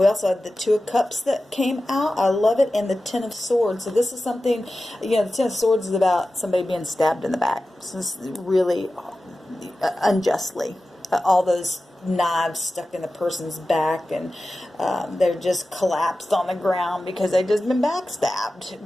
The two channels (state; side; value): normal; both; correlation 0.94